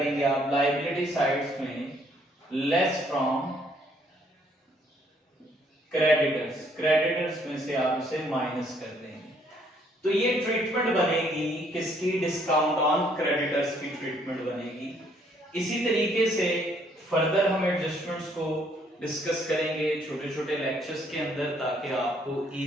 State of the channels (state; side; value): normal; both; correlation 0.66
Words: आप, लायबिलिटी साइड्स में लेस फ्रॉम क्रेडिटर्स, क्रेडिटर्स में से आप इसे माइनस कर देंगे। तो ये ट्रीटमेंट बनेगी किसकी? डिस्काउंट ऑन क्रेडिटर्स की ट्रीटमेंट बनेगी। इसी तरीके से फर्दर हम एडजस्टमेंट्स को डिस्कस करेंगे छोटे छोटे लेक्चर्स के अंदर, ताकि आपको